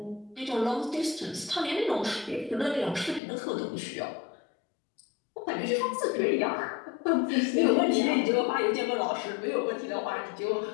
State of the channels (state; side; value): drops out; right; at 3.2 s